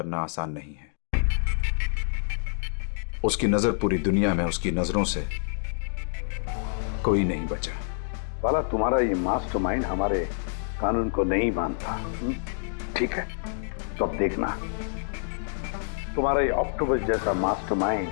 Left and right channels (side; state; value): right; silent; digital silence